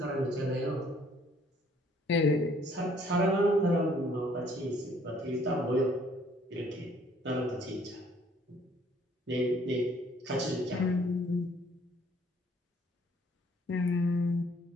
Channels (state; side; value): normal; both; correlation 0.61